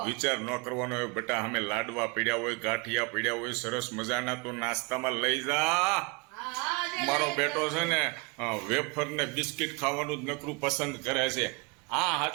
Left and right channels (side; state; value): left; quieter; 29.0 dB